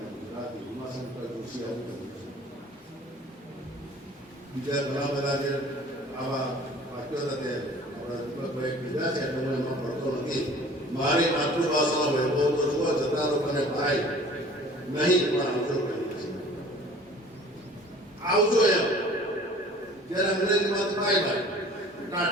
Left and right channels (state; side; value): normal; both; correlation 0.48